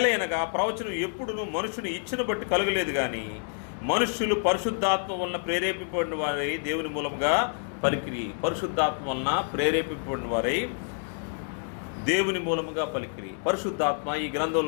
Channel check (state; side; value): silent; right; 59 dB below the other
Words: ప్రవచనం ఎప్పుడునూ మనుషుని ఇచ్చిన బట్టి కలగలేదు, కానీ మనుష్యులు పరిశుద్ధాత్మ వలన ప్రేరేపింపబడిన వారై దేవుని మూలముగా పలికిరి. పరిశుద్ధాత్మ వలన ప్రేరేపింపబడిన వారై దేవుని మూలముగా పలికిరి. పరిశుద్ధాత్మ ఈ